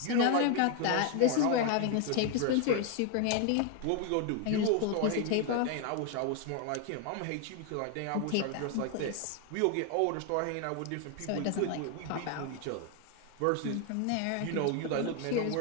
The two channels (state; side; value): different; both; correlation 0.01